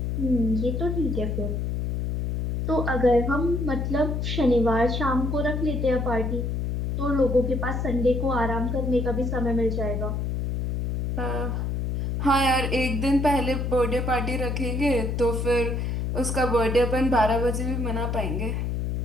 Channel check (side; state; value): left; noise; hum, 1 dB below the sound